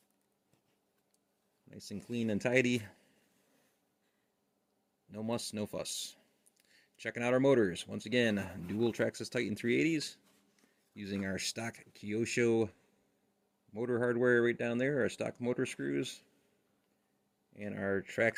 Nice and clean and tidy. No muss, no fuss. Checking out our motors. Once again, dual Traxxas Titan 380s. Using our stock Kyosho motor hardware right down there. Our stock motor screws. And our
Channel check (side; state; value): both; identical; correlation 1.00